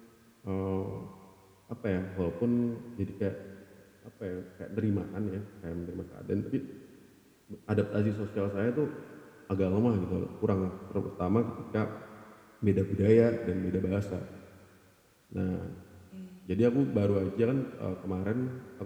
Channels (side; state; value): both; identical; correlation 1.00